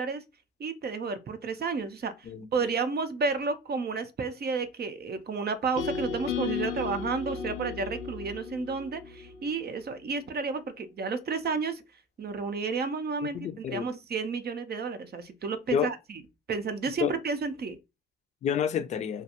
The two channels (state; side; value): normal; both; correlation 0.32